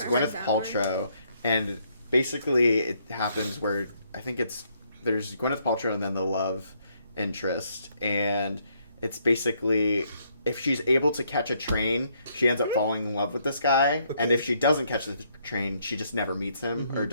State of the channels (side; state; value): both; inverted; correlation -0.71